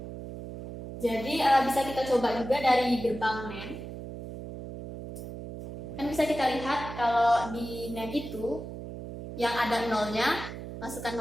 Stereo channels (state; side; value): noise; right; hum, 10 dB below the sound